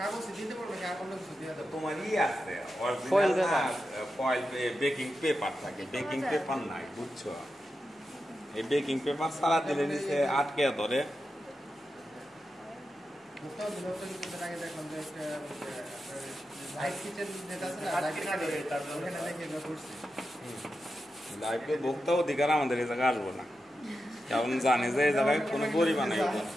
দিতে পারবো না, অন্য কিছু দিয়ে দেবো? তোমার ই আছে অরিজিনাল না, ফয়েল বেকিং পেপার থাকে, বেকিং পেপার নাই বুঝছো, এই বেকিং পেপার সারা দিলে নিচে আটকে ধরে। আগে দেখলাম যে একটা লাইভ কিচেন যেটা আছে না, লাইভ কিচেন ওখানে দেখে আমরা করছি। লাইভে ভোক্তা অধিকার আমাদের এই জায়গায় আসবো না, কারণ জানে যে এই জায়গায় কোনো গরিব বানাই।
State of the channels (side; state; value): both; normal; correlation 0.89